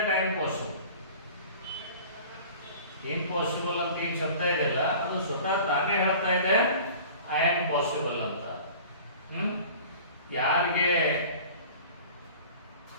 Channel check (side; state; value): both; inverted; correlation -0.43